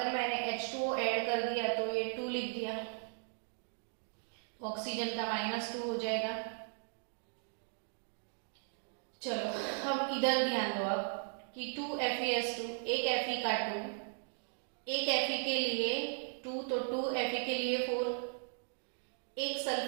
मैंने H2O ऐड कर दिया तो ये 2 लिख दिया, ऑक्सीजन का -2 हो जाएगा। चलो अब इधर ध्यान दो आप कि 2FeS2, एक Fe का 2, एक Fe के लिए 2 तो 2Fe के लिए 4, एक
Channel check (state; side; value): silent; left; 53 dB below the other